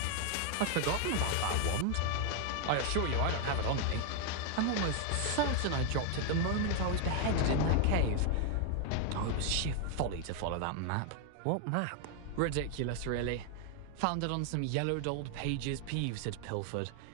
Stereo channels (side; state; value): both; different; correlation 0.00